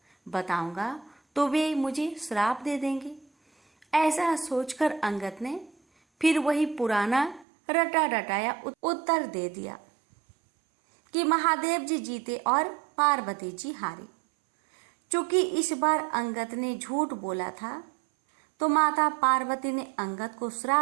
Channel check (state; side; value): drops out; left; at 7.5 s